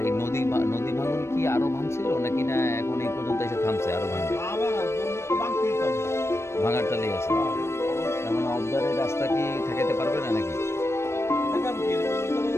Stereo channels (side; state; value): right; late; 0.13 ms